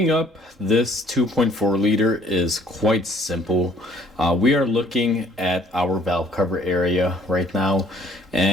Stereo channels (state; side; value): normal; both; correlation 0.58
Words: up this 2.4 liter is quite simple. We are looking at our valve cover area right now,